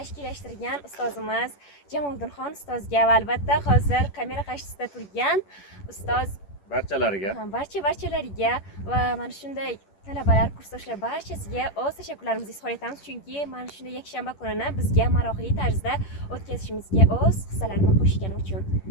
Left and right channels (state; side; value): late; right; 10 ms